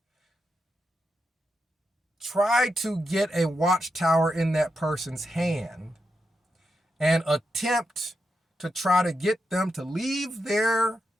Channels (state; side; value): normal; both; correlation 0.86